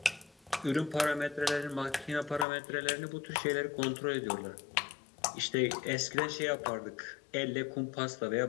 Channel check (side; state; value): right; drops out; at 2.5 s